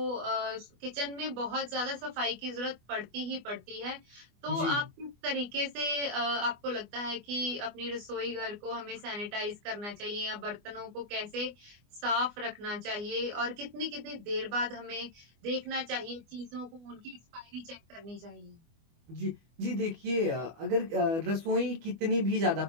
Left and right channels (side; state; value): left; late; 24 ms